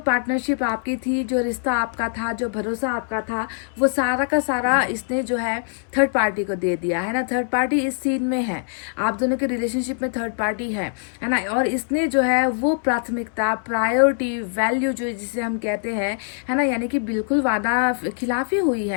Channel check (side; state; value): right; silent; 63 dB below the other